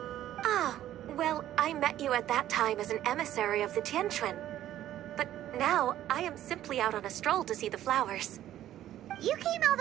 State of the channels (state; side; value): quieter; left; 12.6 dB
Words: Ah, well, I met you at that time as an emissary of the Tianquan. But now, I am simply out on a stroll to see the flowers. You came all